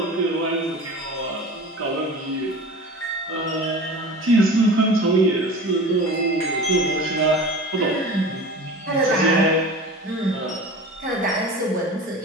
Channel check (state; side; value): normal; both; correlation 0.35